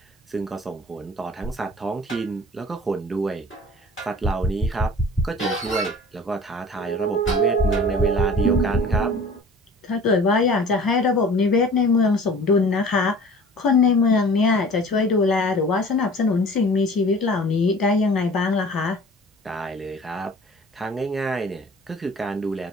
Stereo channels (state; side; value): normal; both; correlation 0.45